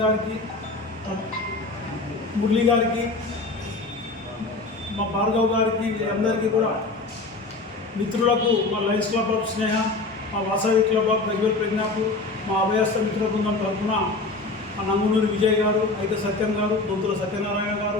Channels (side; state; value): right; quieter; 3.4 dB